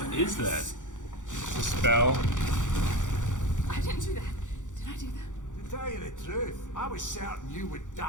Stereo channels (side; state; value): right; late; 0.86 ms